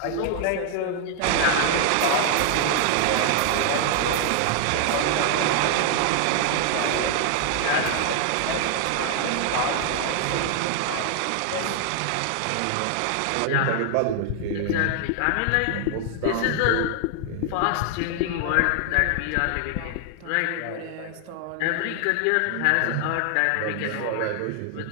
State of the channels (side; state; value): both; different; correlation 0.00